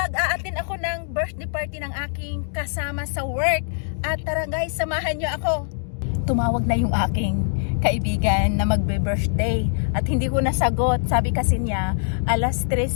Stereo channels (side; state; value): right; silent; digital silence